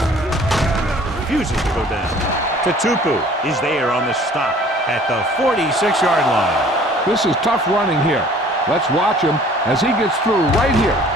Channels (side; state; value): both; normal; correlation 0.52